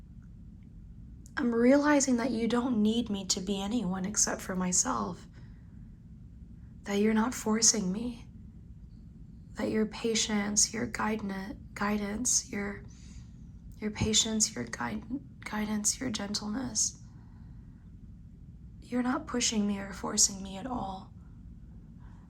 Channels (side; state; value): both; identical; correlation 1.00